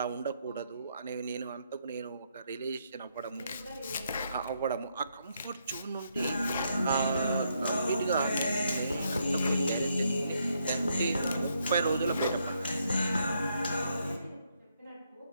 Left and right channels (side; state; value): both; inverted; correlation -0.76